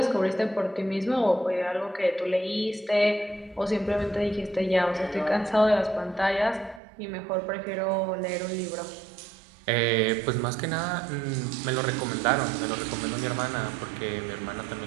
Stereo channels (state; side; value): drops out; left; at 6.8 s